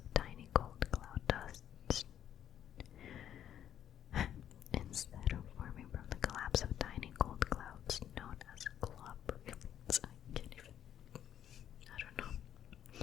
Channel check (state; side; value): quieter; right; 10.3 dB